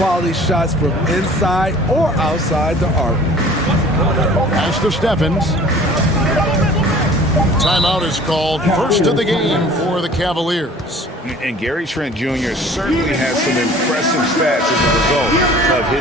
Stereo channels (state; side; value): normal; both; correlation 0.48